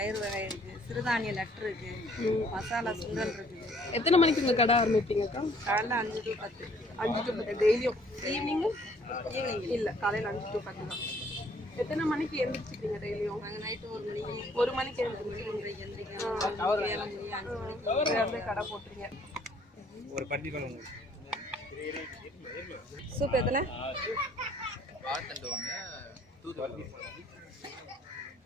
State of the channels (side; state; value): both; normal; correlation 0.61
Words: வகை இருக்குது, சிறுதானிய லட்டு இருக்குது, மசாலா சுண்டல் இருக்குது. எத்தனை மணிக்கு உங்கள் கடை ஆரம்பிப்பீங்கக்கா? காலைல 5 to 10. 5 to 10 டெய்லியும்? ஈவினிங்கும்? ஈவினிங் இல்லை, காலையில் 5 to 10 தான். எத்தனை மணிக்கு எழுந்திரிச்சிக்கிறீங்க டெய்லியும்? நாங்கள் நைட்டு 1 மணிக்கு எழுந்திரிச்சிங்க. எந்திரிக்கிறோம். 7 மணி 5 மணிக்கு கடை போட்டுறீங்க. ஒரு பட்டி பண்ணுங்க. சூப் எத்தனை? வாழைத்தண்டு ஒன்று, தூதுவளை